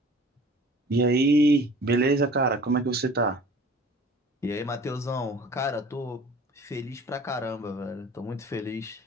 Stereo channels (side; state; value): both; normal; correlation 0.47